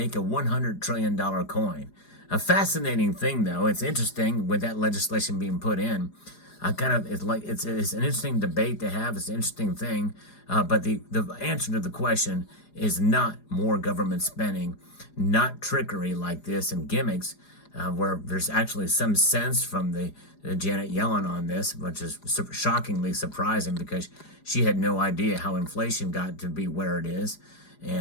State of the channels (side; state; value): right; late; 4.9 ms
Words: a $100 trillion coin. A fascinating thing, though. It's interesting with that legislation being put in. It's an interesting debate to have. It's an interesting thing, but the answer to the question is not more government spending, not trickery like this and gimmicks, where there's actually some sense from the Janet Yellen on this, which is shockingly surprising because she had no idea how inflation got to be where it is,